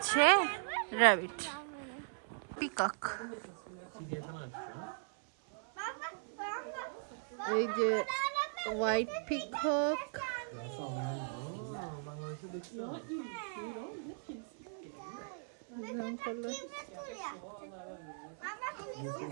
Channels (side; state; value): left; silent; 52 dB below the other